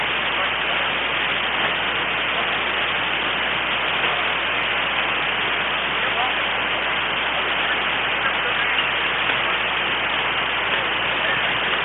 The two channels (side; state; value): right; noise; hum, 18 dB below the sound